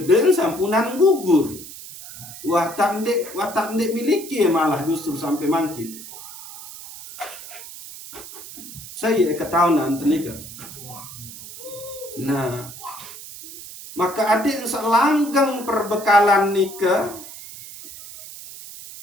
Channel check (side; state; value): right; noise; hiss, 14 dB below the sound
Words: sampunan gugur. Watak ndek miliki malah justru sampai mangkin. Saya ketahuan nikah. Nah, maka adik selanggeng perbekalan nikah